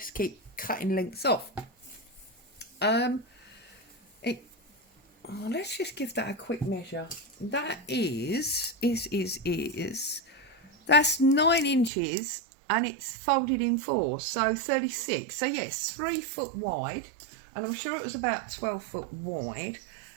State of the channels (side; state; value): left; drops out; at 11.9 s